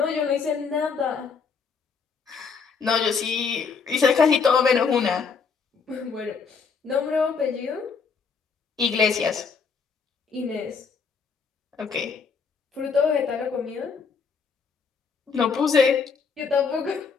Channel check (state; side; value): quieter; right; 5.5 dB